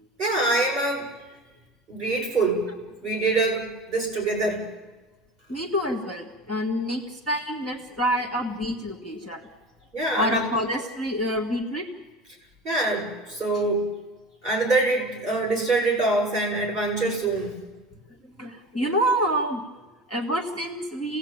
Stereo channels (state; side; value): normal; both; correlation 0.33